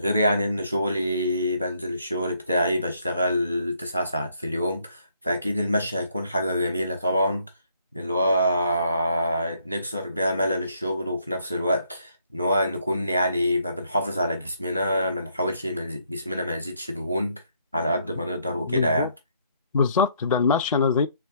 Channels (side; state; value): both; inverted; correlation -0.70